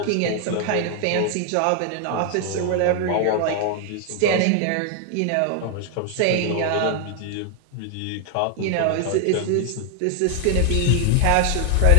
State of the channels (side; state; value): both; different; correlation 0.00